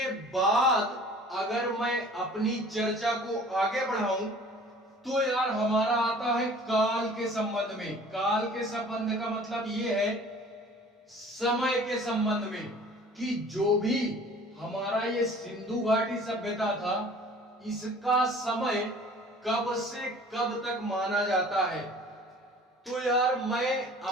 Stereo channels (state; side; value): normal; both; correlation 0.49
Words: बाद अगर मैं अपनी चर्चा को आगे बढ़ाऊं तो यार हमारा आता है काल के संबंध में। काल के संबंध का मतलब ये है समय के संबंध में, कि जो भी हमारा ये सिंधु घाटी सभ्यता था इसका समय कब से कब तक माना जाता है। तो यार मैं